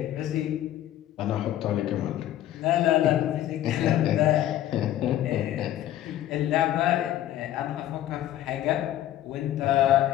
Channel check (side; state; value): right; quieter; 12.8 dB